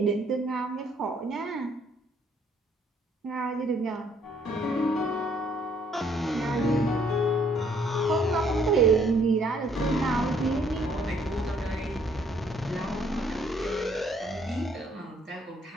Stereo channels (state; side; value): normal; both; correlation 0.65